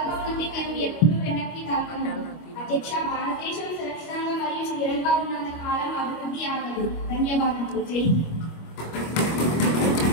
నుండి మేము ఎప్పుడూ వెనక్కి తగ్గము. అధ్యక్ష, భారతదేశం సురక్షితంగా మరియు స్థిరంగా ఉన్నంత కాలం అభివృద్ధి ఆగదు. ధన్యవాదాలు. జై హింద్.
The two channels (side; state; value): right; late; 25 ms